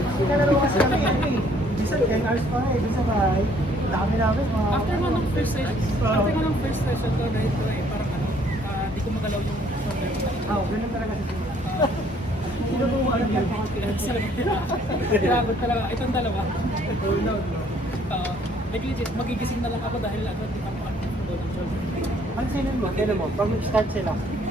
yun. Kalaro kasi kami ano eh. Minsan 10 hours pa eh, dun sa bahay. Dami namin mga... After mo ng first session ko, dahil ko eh, parang ano, di ko magalaw yung shoulder ko. Ganun talaga sa sila. Sinubukan lang yan. Grabe talaga, itong dalawa. Like legit, magigising na lang ako dahil ano, di pa ako ng shoulder. Pansinin mo, kailan mo, pag mag-start sila,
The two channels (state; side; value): normal; both; correlation 0.62